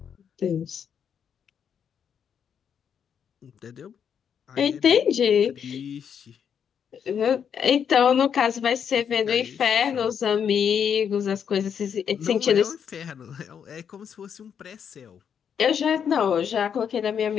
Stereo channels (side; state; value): right; quieter; 7.8 dB